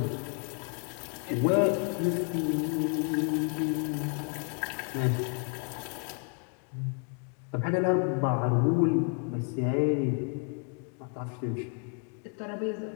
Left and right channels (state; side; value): quieter; right; 38.3 dB